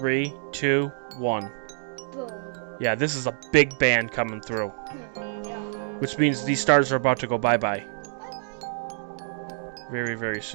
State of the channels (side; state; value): left; silent; digital silence